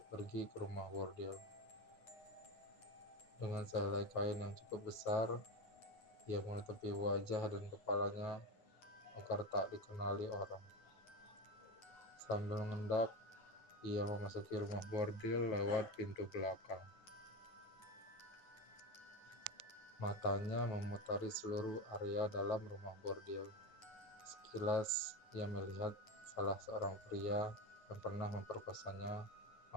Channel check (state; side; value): late; right; 9.3 ms